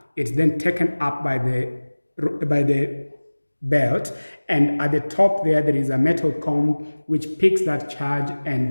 it's then taken up by the belt, and at the top there is a metal comb which picks that charge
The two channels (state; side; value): inverted; both; correlation -1.00